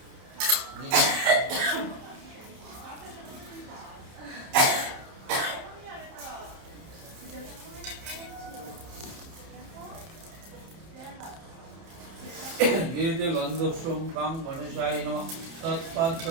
एते गन्धस्वं कां गणेशाय नमः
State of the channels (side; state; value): left; late; 30 ms